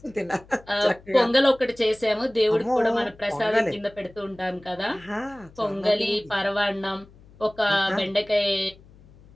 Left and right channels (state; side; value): noise; left; hum, 25 dB below the sound